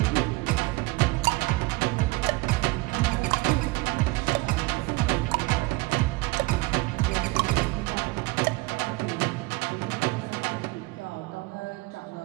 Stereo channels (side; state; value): left; quieter; 23.0 dB